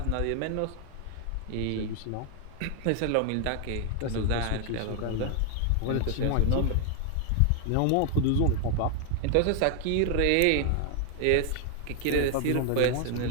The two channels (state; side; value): different; both; correlation 0.00